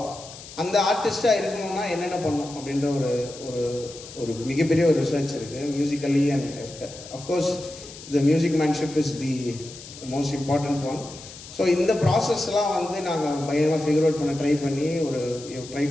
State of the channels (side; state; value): left; noise; hiss, 16 dB below the sound